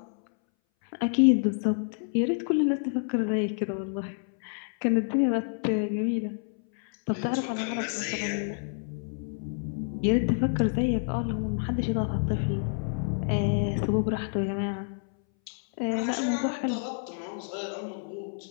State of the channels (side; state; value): right; silent; 59 dB below the other